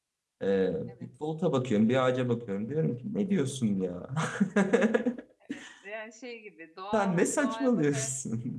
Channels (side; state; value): both; identical; correlation 1.00